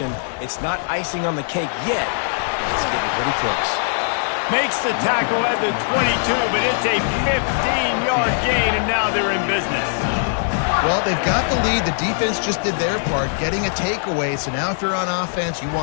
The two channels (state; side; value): silent; right; digital silence